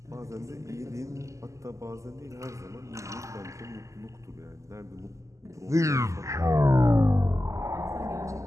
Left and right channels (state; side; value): late; left; 0.15 ms